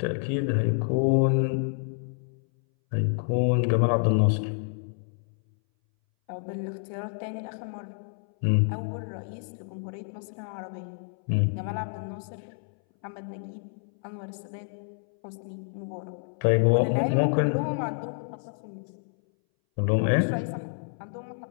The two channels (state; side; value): silent; right; 59 dB below the other